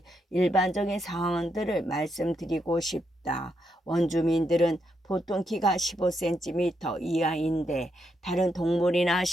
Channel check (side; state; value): both; normal; correlation 0.80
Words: 일반적인 상황들을 말씀드리고 싶다. 원주민들은 보통 키가 15cm 이하인데 다른 동물이나